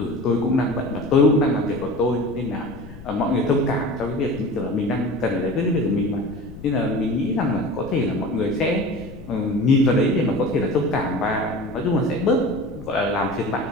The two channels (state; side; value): noise; left; rumble, 16 dB below the sound